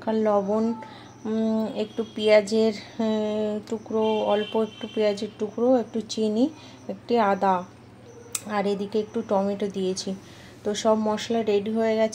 লবণ, একটু পেঁয়াজের টুকরো, অল্প একটু পেঁয়াজের টুকরো, একটু চিনি, একটু আদা, আর এদিকে একটু টমেটো দিয়েছি। তো সব মশলা রেডি হয়ে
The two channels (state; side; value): identical; both; correlation 1.00